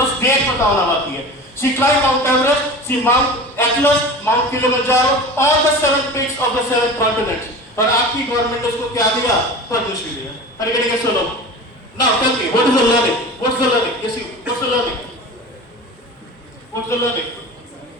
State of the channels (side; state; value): both; normal; correlation 0.34